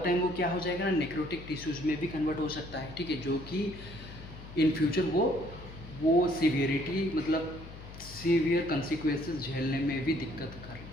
वो क्या हो जाएगा ना, नेक्रोटिक टिश्यूज में भी कन्वर्ट हो सकता है, ठीक है, जो कि इन फ्यूचर वो सीवियरिटी मतलब सीवियर कंसिक्वेंसेस झेलने में भी दिक्कत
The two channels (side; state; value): left; noise; hum, 14 dB below the sound